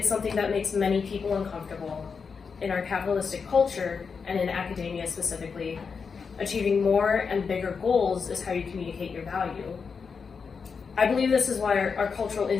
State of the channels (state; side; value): quieter; right; 5.6 dB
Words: something that makes many people uncomfortable. In our capitalistic culture, and in academia specifically, achieving more and bigger goals is how you communicate your value. I believe this is why our cultural